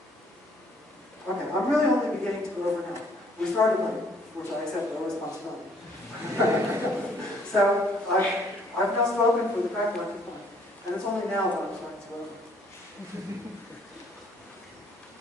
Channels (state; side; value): normal; both; correlation 0.62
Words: Okay, I'm really only beginning to go over now. We started late, which I accept no responsibility. So I've now spoken for the correct length of time, and it's only now that I'm starting to go over.